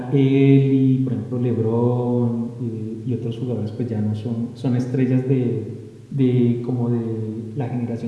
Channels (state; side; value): identical; both; correlation 1.00